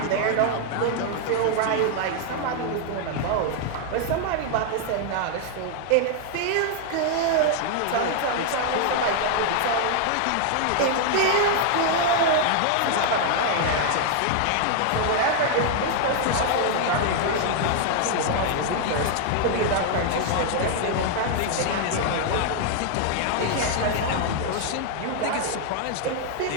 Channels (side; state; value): both; different; correlation 0.00